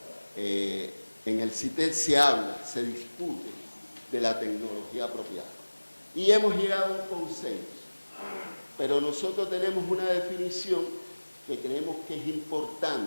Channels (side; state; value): both; inverted; correlation -1.00